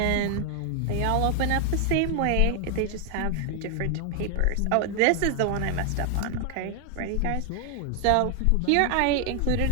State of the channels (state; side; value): different; both; correlation 0.00